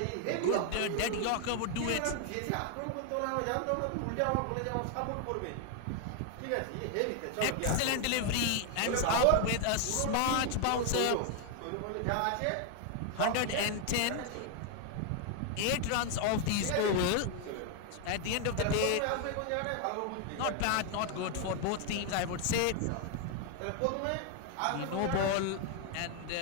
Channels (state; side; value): different; both; correlation 0.00